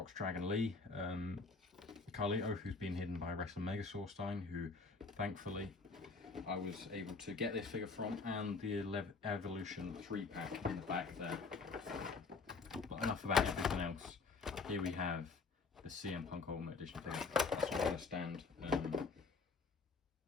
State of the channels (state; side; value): quieter; right; 4.3 dB